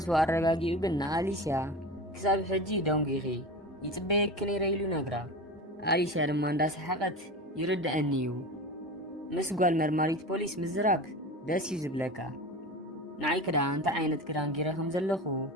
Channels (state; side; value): normal; both; correlation 0.29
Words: ኣረጋጊኡ ግን ንኣሊስያ ክሳብ ሕጂ ደንጊኺ يتبيك نيريلو نقرا أليسيا لما انداس حقت يرد أنيو مسقال مرماريت بوليس مزراب داس يزبلكا نعي كدا انت عينت كدان جيرهم زلخو